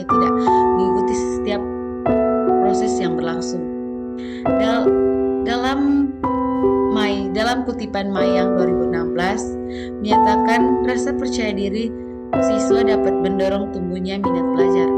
tidak mengikuti setiap proses yang berlangsung. Dalam kutipan Mayang 2016 menyatakan rasa percaya diri siswa dapat mendorong tumbuhnya minat belajar.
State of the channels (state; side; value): identical; both; correlation 1.00